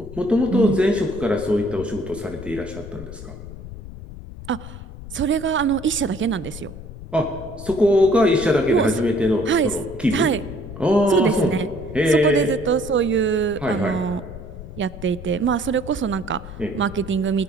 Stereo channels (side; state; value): left; noise; rumble, 13 dB below the sound